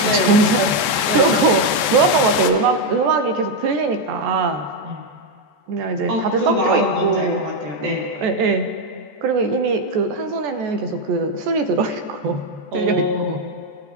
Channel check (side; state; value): left; late; 14 ms